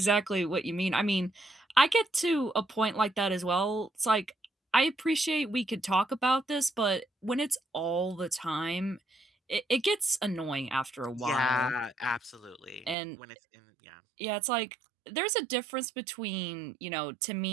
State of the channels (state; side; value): drops out; left; at 13.0 s